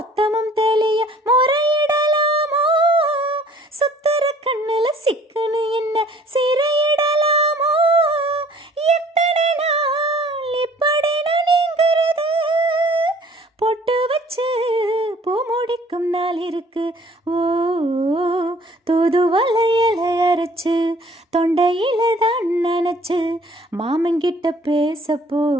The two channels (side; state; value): both; normal; correlation 0.55